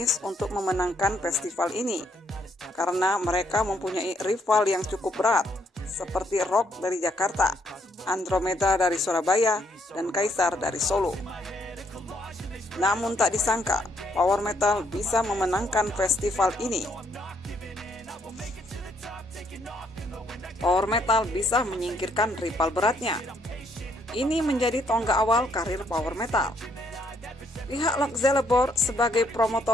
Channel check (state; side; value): normal; both; correlation 0.71